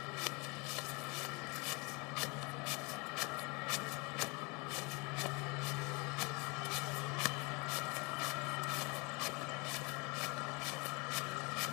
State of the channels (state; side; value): quieter; right; 28.8 dB